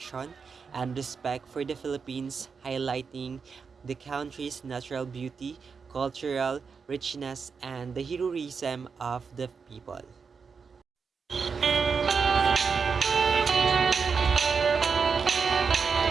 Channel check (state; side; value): quieter; left; 5.5 dB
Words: and respect for the Philippines, highlighting the country's natural beauty, cultural richness, and the heroism of the people.